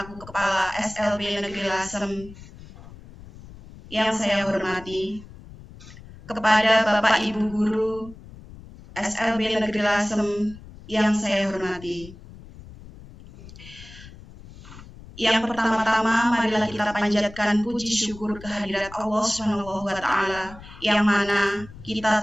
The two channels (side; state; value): left; noise; rumble, 18 dB below the sound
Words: Kepala SLB Negeri Lasem yang saya hormati, kepada Bapak Ibu Guru SLB Negeri Lasem yang saya hormati. Yang pertama-tama marilah kita panjatkan puji syukur kehadirat Allah Subhanahu wa taala yang mana